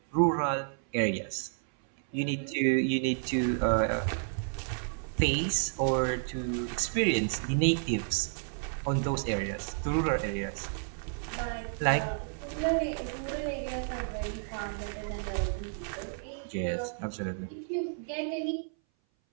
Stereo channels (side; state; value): left; silent; 57 dB below the other